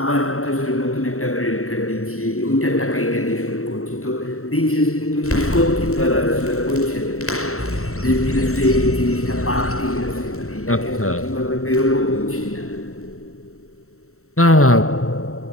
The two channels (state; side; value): late; right; 0.63 ms